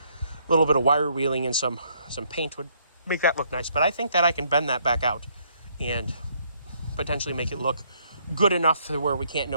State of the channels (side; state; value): both; inverted; correlation -0.68